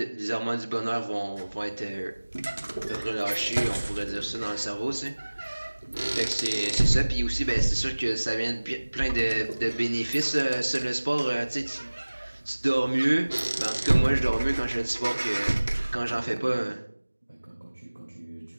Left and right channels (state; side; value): inverted; both; correlation -1.00